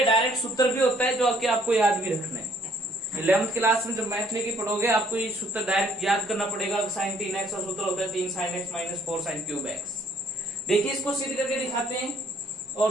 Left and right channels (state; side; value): normal; both; correlation 0.63